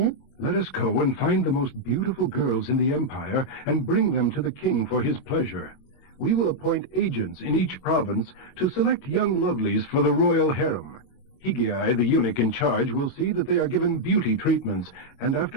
Let us go and find the most beautiful girls in the empire and bring them to the king for his pleasure. We will appoint agents in each province to select young lovelies for the royal harem. Higai, the eunuch in charge, will see that they are given beauty treatments, and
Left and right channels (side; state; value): right; late; 22 ms